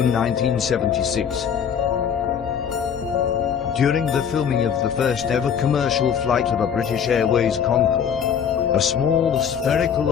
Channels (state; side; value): quieter; right; 7.7 dB